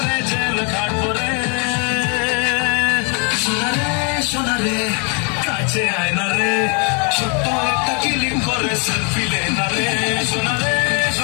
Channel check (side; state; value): right; quieter; 37.0 dB